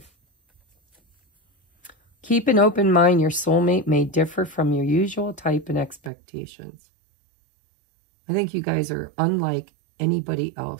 Keep an open mind. Your soulmate may differ from your usual type and expectations. I think you guys are unlike anybody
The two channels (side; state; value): left; drops out; at 6.1 s